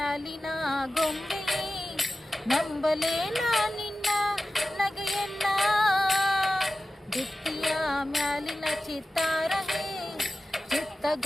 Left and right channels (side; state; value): both; normal; correlation 0.94